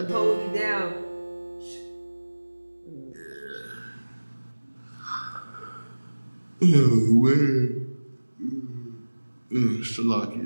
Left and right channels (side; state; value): both; inverted; correlation -1.00